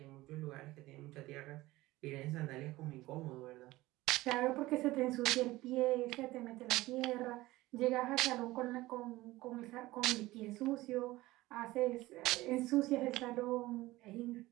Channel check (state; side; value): quieter; left; 18.5 dB